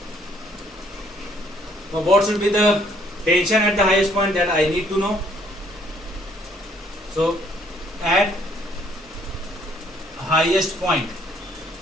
Now what should be the tension at the highest point, that I need to know. So at highest point,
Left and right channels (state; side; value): normal; both; correlation 0.65